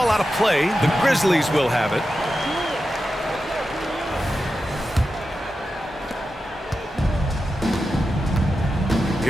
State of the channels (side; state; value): both; normal; correlation 0.91